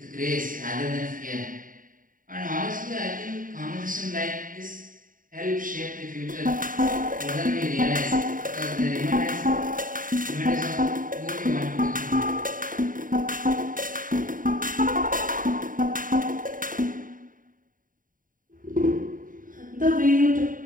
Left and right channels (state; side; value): late; left; 0.39 ms